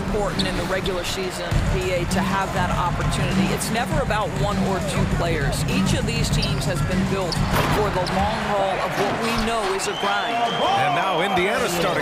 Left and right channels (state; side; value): identical; both; correlation 1.00